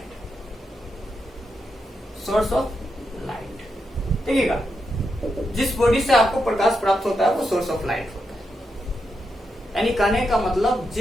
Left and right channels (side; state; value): both; normal; correlation 0.84